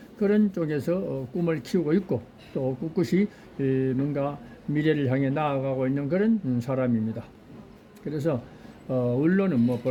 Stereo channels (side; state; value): both; identical; correlation 1.00